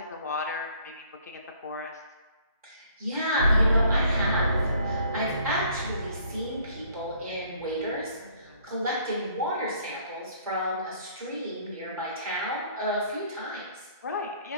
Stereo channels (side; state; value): both; inverted; correlation -0.59